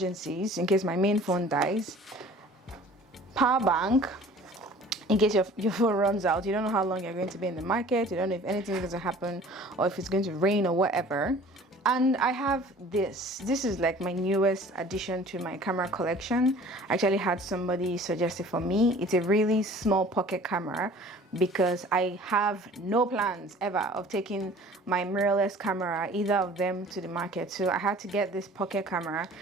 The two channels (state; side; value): normal; both; correlation 0.48